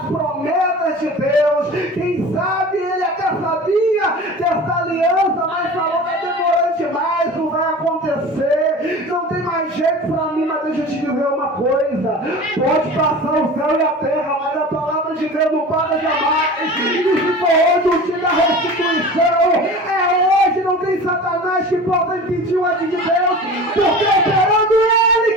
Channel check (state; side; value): normal; both; correlation 0.36